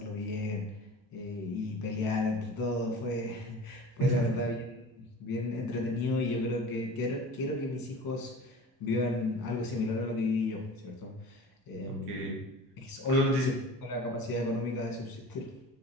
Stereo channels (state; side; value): normal; both; correlation 0.39